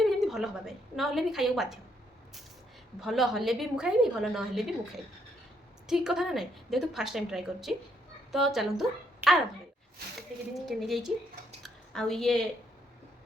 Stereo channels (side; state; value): both; normal; correlation 0.73